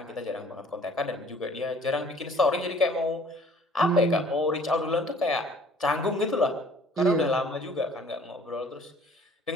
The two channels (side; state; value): both; normal; correlation 0.54